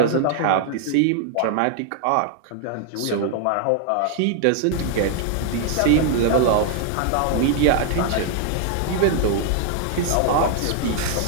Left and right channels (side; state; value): both; different; correlation 0.00